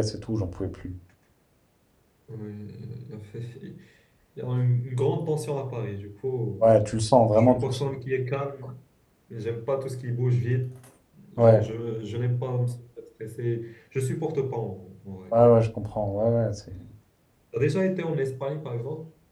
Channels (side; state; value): both; identical; correlation 1.00